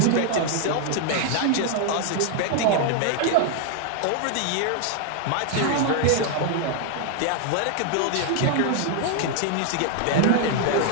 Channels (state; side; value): different; both; correlation 0.00